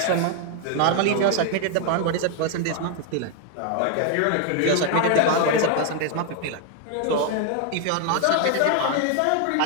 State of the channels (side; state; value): both; different; correlation 0.00